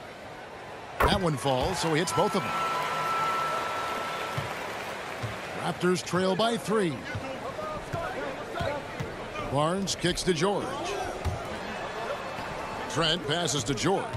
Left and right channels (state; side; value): identical; both; correlation 1.00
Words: That one falls, so he hits both of them. Raptors trail by 3. Barnes kicks to George. Trent passes to